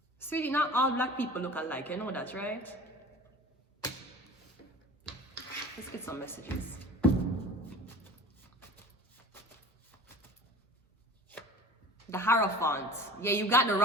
Sweetie, not all black people look alike, you know that, right? Let's get some messages. The Hierophant. Yeah, you got the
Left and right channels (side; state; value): both; normal; correlation 0.40